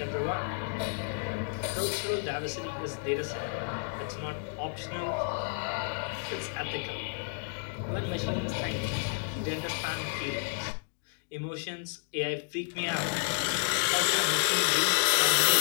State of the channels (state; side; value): silent; right; 57 dB below the other